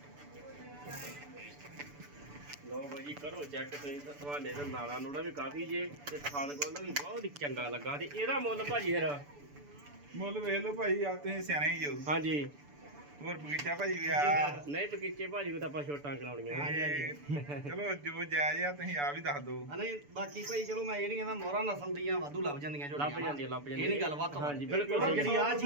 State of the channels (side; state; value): left; late; 6.9 ms